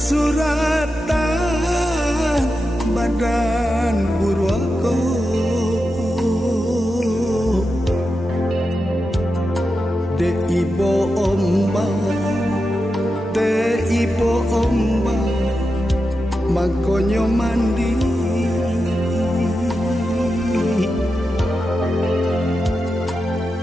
badan burwako de ibo omba makonyo mandi.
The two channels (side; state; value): both; normal; correlation 0.89